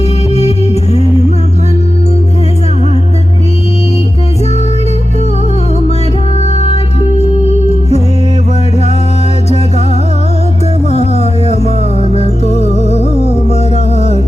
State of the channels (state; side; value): normal; both; correlation 0.93